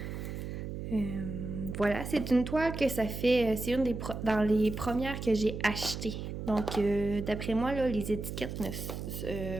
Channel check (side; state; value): right; noise; hum, 6 dB below the sound